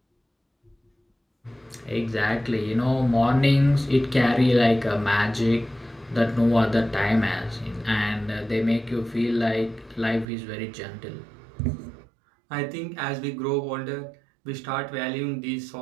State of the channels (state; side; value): drops out; left; at 10.2 s